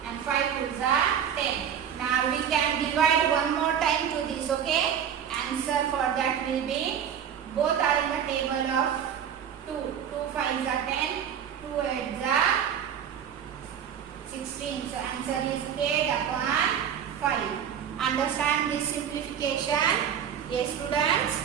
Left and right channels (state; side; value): quieter; left; 8.6 dB